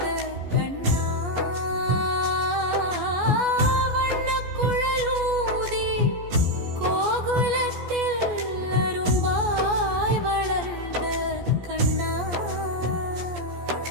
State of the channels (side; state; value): left; late; 14 ms